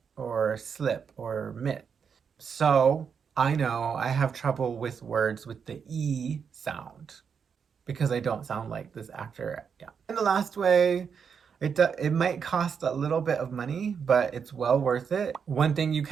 or slip or mit. So I know I have trouble with words with the E sound because I don't sound like this actor. Yeah. And the last way, it might cost a little bit of money, but it's well worth it. One thing you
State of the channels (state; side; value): quieter; left; 6.6 dB